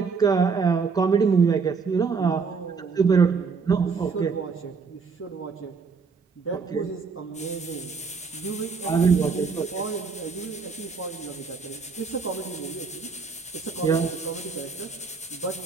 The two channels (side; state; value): left; quieter; 5.1 dB